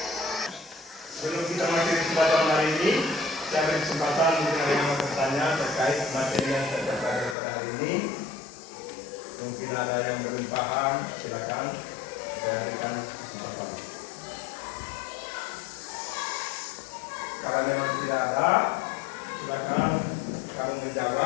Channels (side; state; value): right; drops out; at 7.4 s